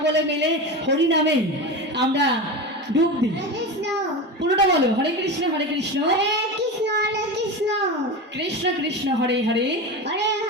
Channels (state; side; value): normal; both; correlation 0.23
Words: মিলে হরিনামে আমরা ডুব দিই। পুরোটা বলো, হরে কৃষ্ণ কৃষ্ণ কৃষ্ণ কৃষ্ণ হরে হরে,